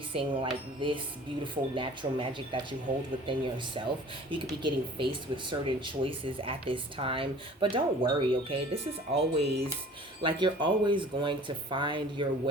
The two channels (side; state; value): both; normal; correlation 0.47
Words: like this beautiful natural magic that you hold within yourself. You could be getting faced with certain choices at this time, but don't worry, okay? This is always, like, you're always going to find your